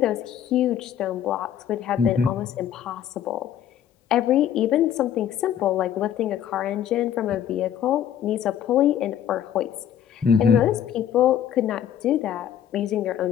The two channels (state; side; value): quieter; right; 9.8 dB